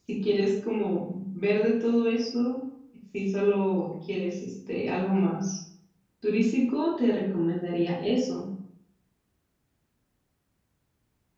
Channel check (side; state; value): both; identical; correlation 1.00